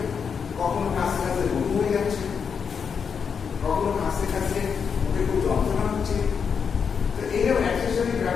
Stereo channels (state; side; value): quieter; right; 6.4 dB